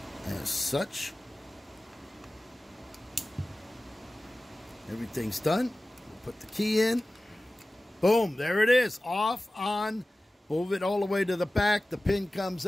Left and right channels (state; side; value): normal; both; correlation 0.97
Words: as such. Everything's done. We'll put the key in. Boom, there it is. Off, on. Move it all the way to the back. The pin comes